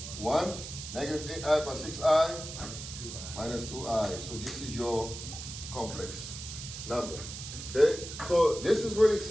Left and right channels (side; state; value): right; noise; hiss, 10 dB below the sound